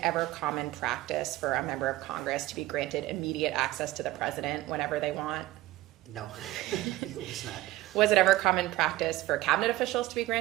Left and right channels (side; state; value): left; quieter; 16.7 dB